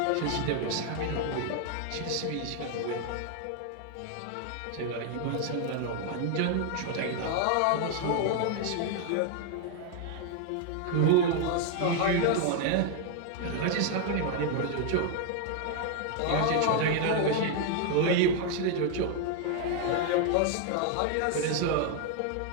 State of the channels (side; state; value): both; different; correlation 0.00